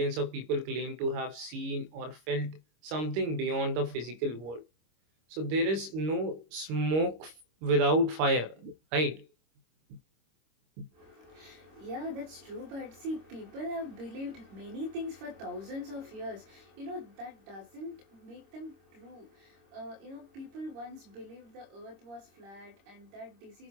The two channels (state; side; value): late; left; 26 ms